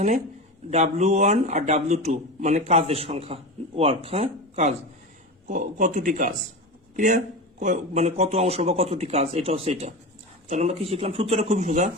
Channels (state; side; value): normal; both; correlation 0.25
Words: W1 আর W2 মানে কাজের সংখ্যা, ওয়ার্ক, হ্যাঁ কাজ, কতটি কাজ, ক্লিয়ার? মানে কত অংশ বা কতটি কাজ, এটা হচ্ছে এটা। তাহলে আমরা কি শিখলাম? সূত্রটা খুবই সোজা,